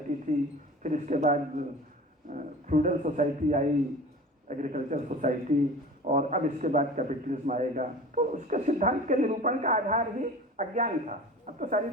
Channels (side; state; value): both; normal; correlation 0.39